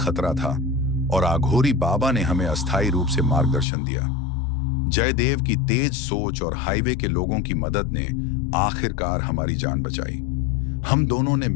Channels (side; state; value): right; drops out; at 3.7 s